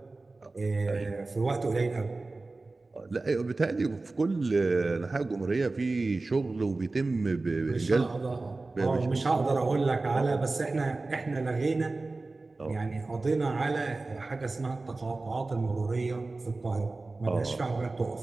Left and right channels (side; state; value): left; quieter; 3.4 dB